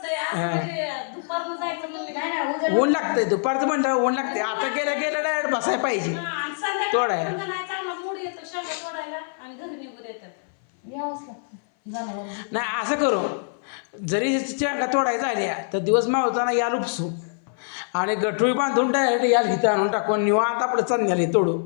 दुपारनं जायचं मग ऊन लागतंय दुपारचं म्हणलं ऊन लागते आता गेलं डायरेक्ट बसायला पाहिजे तोडाय चांगला मूड येतो शेंगा तोडायला आणि घरी निघून येतात यावंच लागतं नाही असं करू जरी शेंगा तोडायचं झाल्या तर दिवस मावताना याल उपसू आणि गठुळी बांधून डायरेक्ट याल हिथं आणून टाकून निवांत आपलं चांगले तोडू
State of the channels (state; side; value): silent; right; 58 dB below the other